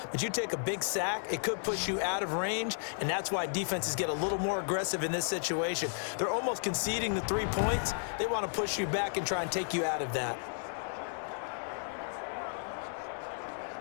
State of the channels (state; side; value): silent; right; digital silence